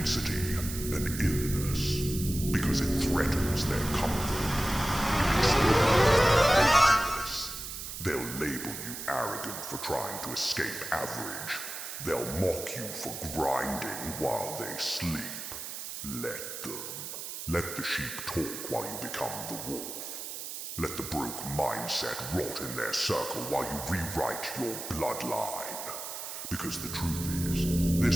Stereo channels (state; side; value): noise; right; hiss, 8 dB below the sound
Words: an illness, because it threatens their comfort. They'll label you arrogant for trying to escape average. They'll mock you for grinding while they sleep. Let them. Let the sheep talk while you become the wolf. Let the broke mindset rot in their circle while you rewrite your bloodline. Because the truth is,